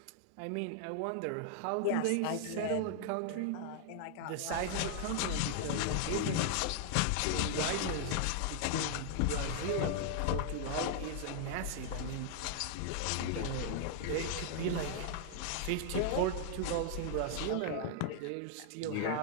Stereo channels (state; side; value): different; both; correlation -0.01